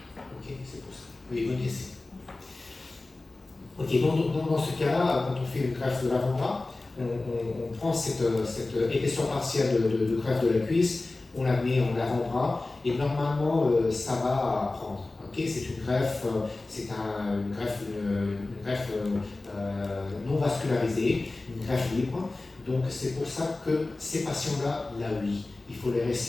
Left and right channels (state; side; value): quieter; right; 3.1 dB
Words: Ok, c'est pour ça. Oui, bonne question. Ok, dans ce cas-là, quand on fait une greffe de l'avant-bras, on prend cette épaisseur partielle de greffe de la cuisse, on la met en avant-bras et normalement ça va prendre. Okay, c'est une greffe, une greffe non vascularisée, une greffe libre. Donc c'est pour ça que ces patients-là, oui, il faut les